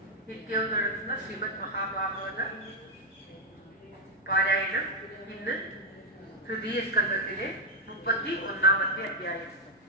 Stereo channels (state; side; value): normal; both; correlation 0.00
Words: നിത്യവും നടത്തുന്ന ശ്രീമദ് മഹാഭാഗവത പാരായണം. ഇന്ന് തൃതീയ സ്കന്ധത്തിലെ 31-ാമത്തെ അധ്യായം.